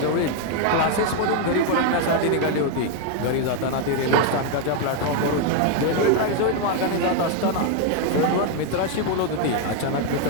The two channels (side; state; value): both; different; correlation 0.01